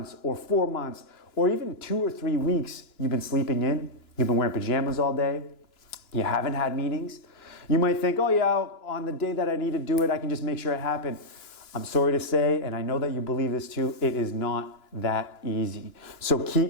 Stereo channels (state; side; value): late; right; 2.9 ms